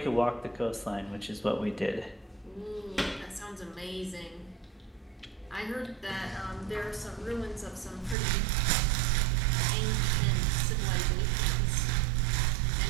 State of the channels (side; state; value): left; drops out; at 8.2 s